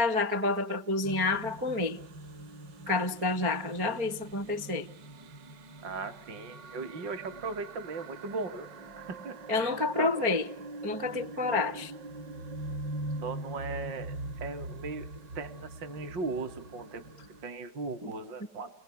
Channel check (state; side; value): late; left; 4.4 ms